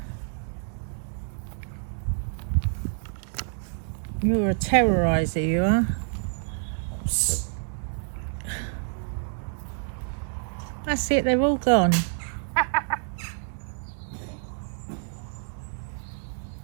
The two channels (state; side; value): silent; left; 59 dB below the other